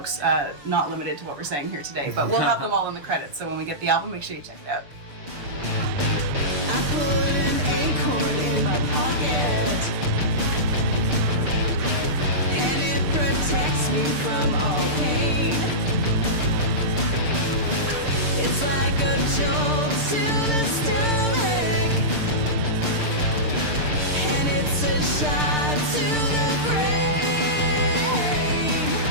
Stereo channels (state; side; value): late; left; 6.7 ms